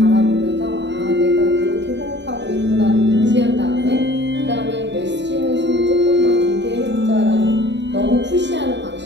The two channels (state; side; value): late; left; 0.52 ms